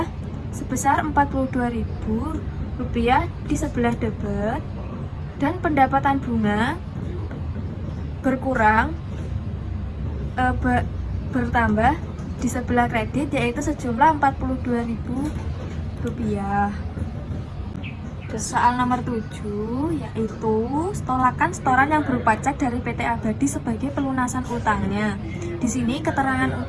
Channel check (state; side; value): identical; both; correlation 1.00